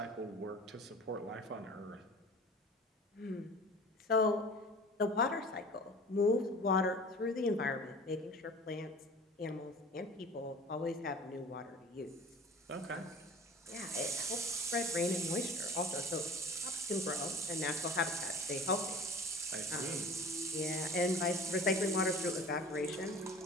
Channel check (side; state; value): both; normal; correlation 0.42